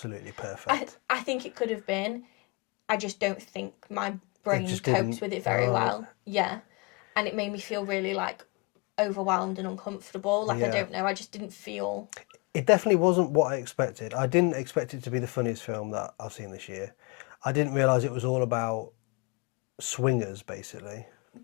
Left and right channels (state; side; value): quieter; right; 28.4 dB